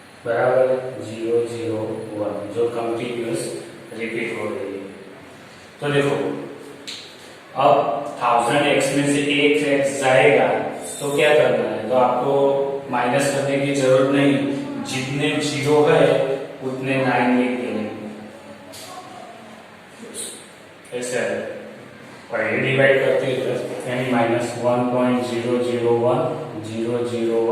बराबर 001, जो कंटिन्यूअस रिपीट हो रही है। तो देखो अब 1000x में से एक x जाएगा, तो क्या करना है, तो आपको माइनस करने की जरूरत नहीं, जितने 0 है उतने 9 लिख देंगे, ऐसे है, पहले डिवाइड करते हैं, यानी -1.001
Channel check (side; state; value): both; identical; correlation 1.00